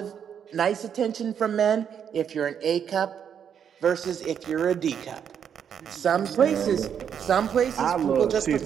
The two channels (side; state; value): left; quieter; 8.2 dB